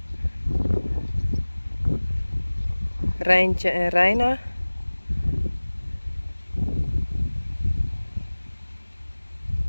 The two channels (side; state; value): both; inverted; correlation -1.00